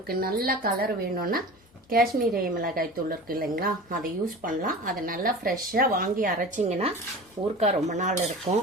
நல்ல கலர் வேணும்னா காஷ்மீரி மிளகாய் தூள் இருக்குது இல்லைங்களா, அதை யூஸ் பண்ணலாம். அதை நல்லா ஃப்ரெஷ்ஷாக வாங்கி அரைச்சிங்கன்னா ஊறுகாய் ரொம்ப நாள் இருக்கும்.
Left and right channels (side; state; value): both; normal; correlation 0.35